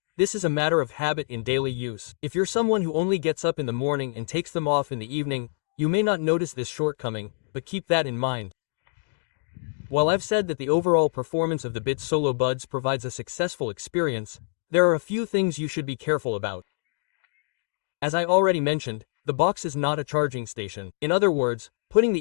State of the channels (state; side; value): silent; right; digital silence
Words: this is a matter of habit in daily use. If you're someone who only gets up in the morning and takes them off in the evening, you may not notice this shortcoming, but keep that in mind. While I've said that the overall performance of the Beats Solo Buds provides a successful experience, there are a few things you should be careful about. As I already mentioned, the box is not a charging station. In other words, putting